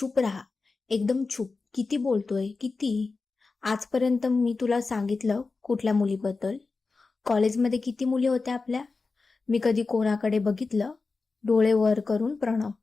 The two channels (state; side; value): quieter; right; 4.0 dB